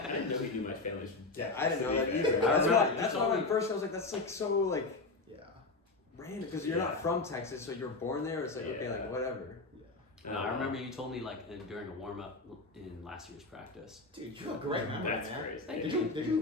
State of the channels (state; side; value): quieter; right; 3.5 dB